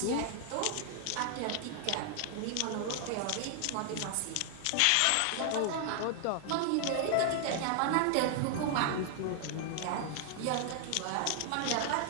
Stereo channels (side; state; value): both; different; correlation 0.00